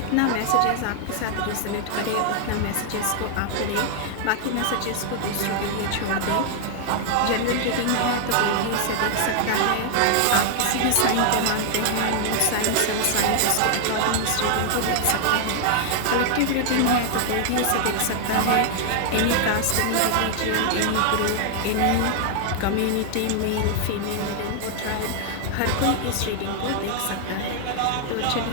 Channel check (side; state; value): both; different; correlation 0.00